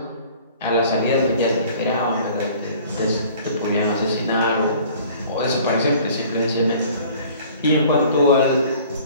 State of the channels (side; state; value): both; inverted; correlation -0.50